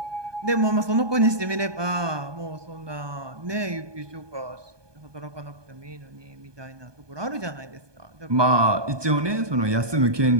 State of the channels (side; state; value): left; late; 1.2 ms